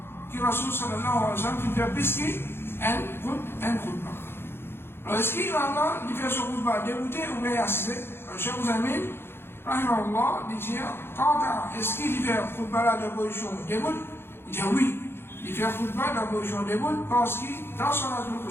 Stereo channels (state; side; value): late; right; 0.11 ms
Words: que Rasul sallallahu alayhi wa sallam fait pisquer un khutbah. Alors, est-ce qu'il va là, il fait ce khutbah débuté ou bien assisté? Cheikh Ouzamin, rahimahullah, il dit, quant à est-ce qu'il fait un khutbah là de position début? Il dit oui, il fait un khutbah de position début parce que dans son Salatul